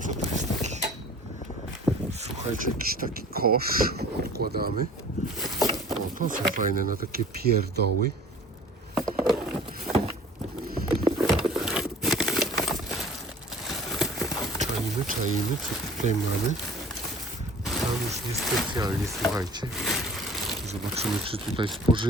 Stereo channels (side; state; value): both; normal; correlation 0.47